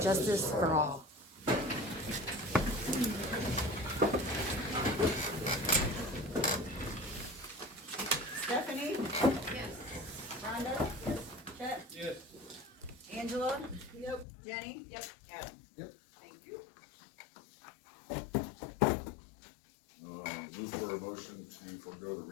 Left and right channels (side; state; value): right; drops out; at 14.2 s